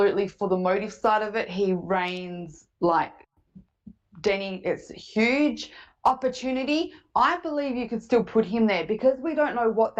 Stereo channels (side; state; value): both; identical; correlation 1.00